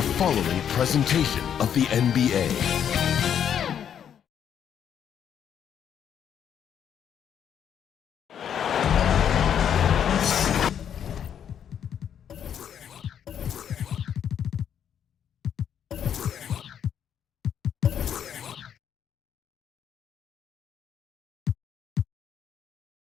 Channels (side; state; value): right; quieter; 8.8 dB